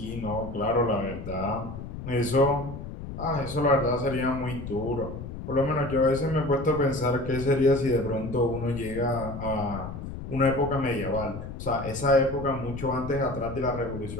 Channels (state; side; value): noise; left; rumble, 9 dB below the sound